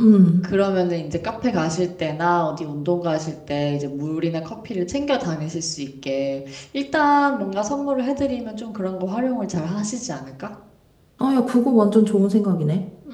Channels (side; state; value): both; identical; correlation 1.00